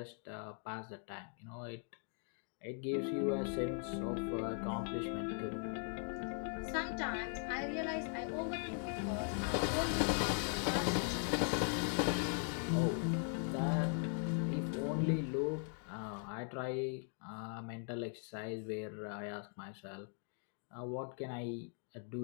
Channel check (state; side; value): silent; right; 51 dB below the other